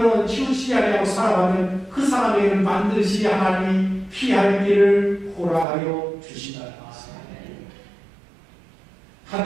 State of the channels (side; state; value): left; drops out; at 5.7 s